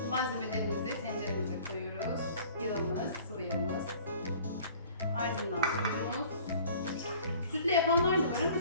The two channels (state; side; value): inverted; both; correlation -0.49